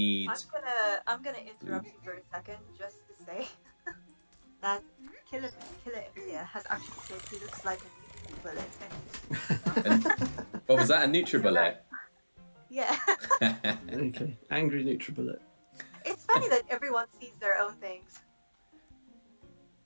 I'm gonna interrupt you for a second just to say that Killer Emilia has actually said he looks like a nuclear bullet. What was that? A NutriBullet? Yeah. Okay. Angry NutriBullet. It's funny that everyone sees their own things.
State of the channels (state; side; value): inverted; both; correlation -1.00